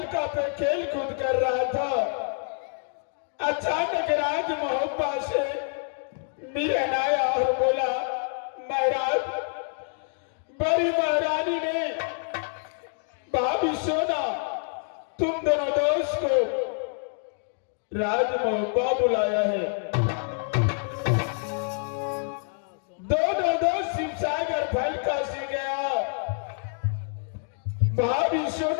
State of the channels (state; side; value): silent; right; 58 dB below the other